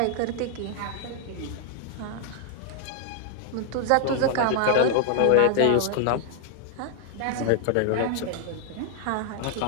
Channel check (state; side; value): different; both; correlation 0.00